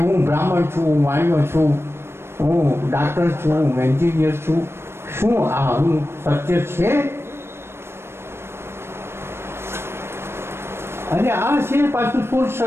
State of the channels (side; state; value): left; late; 0.12 ms